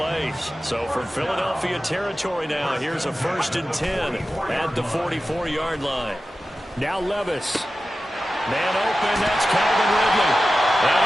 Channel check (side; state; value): both; normal; correlation 0.94